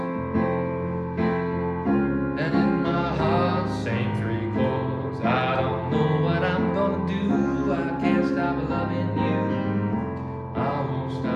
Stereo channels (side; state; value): both; identical; correlation 1.00